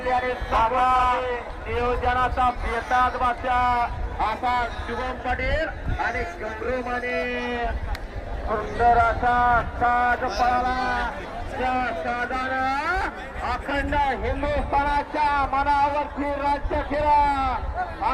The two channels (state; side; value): identical; both; correlation 1.00